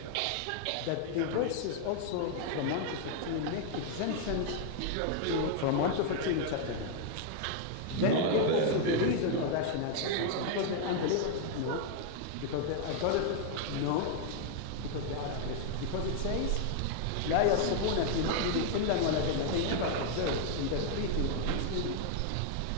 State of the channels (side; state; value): both; different; correlation 0.00